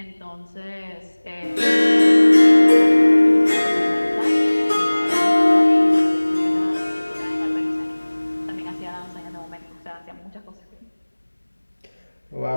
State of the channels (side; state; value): both; inverted; correlation -1.00